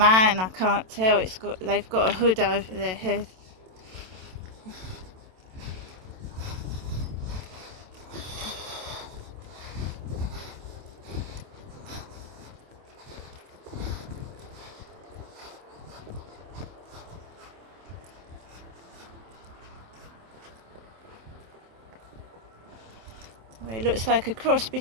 I can't tell. They've got a hood over their head. Well, it looks like a cross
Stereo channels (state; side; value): late; left; 27 ms